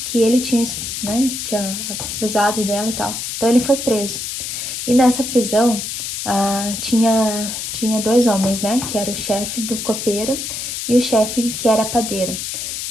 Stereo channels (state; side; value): noise; left; hiss, 5 dB below the sound